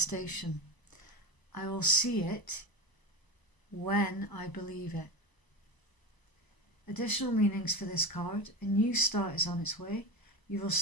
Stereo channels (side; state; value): right; late; 1.0 ms